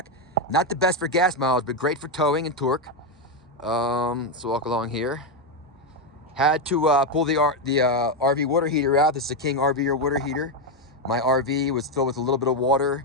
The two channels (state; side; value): normal; both; correlation 0.06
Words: Not the best for gas mileage, but great for towing and torque. So walk along here. Had to pull the RV water heater out. This is a King RV water heater. My RV was filled with a little bit of